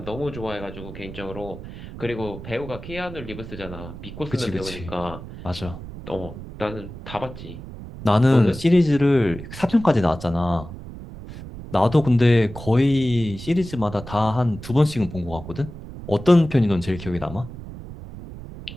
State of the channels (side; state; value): right; noise; rumble, 13 dB below the sound